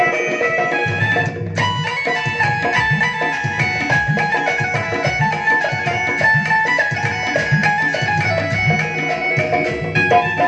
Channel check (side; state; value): both; identical; correlation 1.00